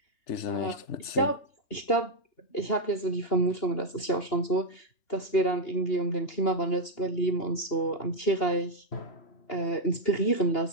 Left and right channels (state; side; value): late; right; 2.8 ms